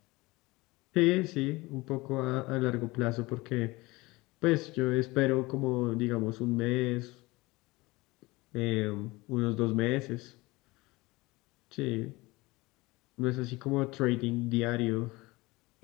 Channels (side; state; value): right; quieter; 22.1 dB